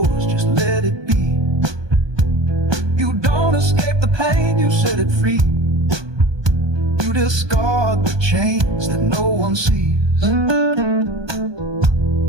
just let it be. You don't escape the pain, you set it free. You discard the chains that no one sees.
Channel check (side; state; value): left; late; 1.2 ms